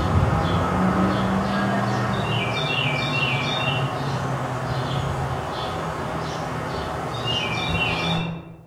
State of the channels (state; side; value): identical; both; correlation 1.00